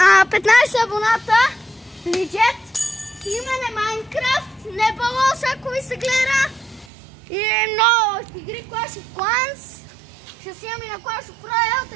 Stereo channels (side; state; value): left; drops out; at 6.9 s